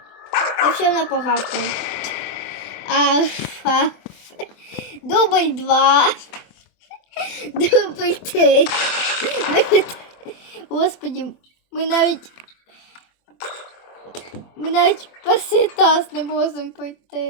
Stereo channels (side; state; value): right; late; 24 ms